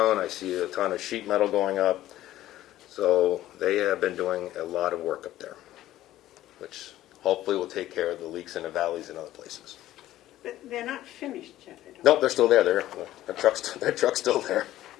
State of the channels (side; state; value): right; quieter; 14.2 dB